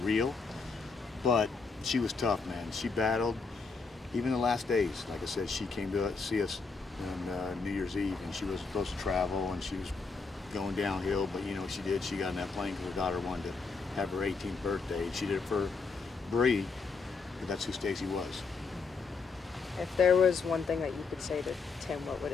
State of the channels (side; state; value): right; quieter; 4.5 dB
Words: real, but she was tough, man. She battled. Even the last days, like I said, she came to see us on New Year's Eve, and she was supposed to travel, and she was going downhill, but you know what she did? She got in that plane because her daughter wanted to have her 18th birthday. She did it for Bree, but that's who Stacy was. If there was one thing that you could say to Tim, what would